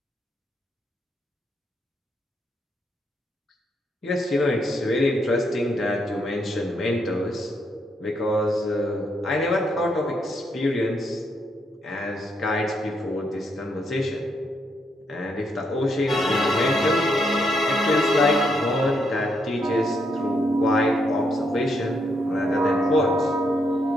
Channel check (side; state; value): both; normal; correlation 0.77